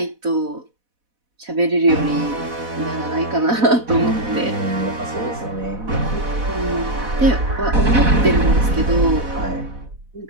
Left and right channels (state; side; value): late; left; 4.1 ms